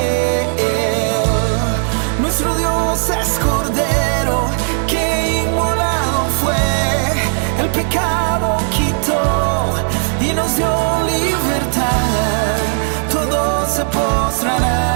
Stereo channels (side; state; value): left; silent; digital silence